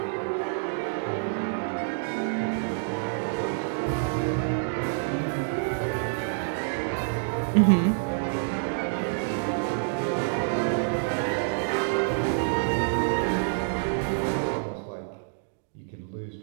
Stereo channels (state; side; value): silent; left; digital silence